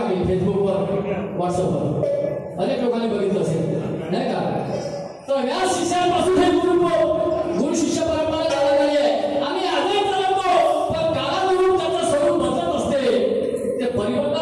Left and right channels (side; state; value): both; identical; correlation 1.00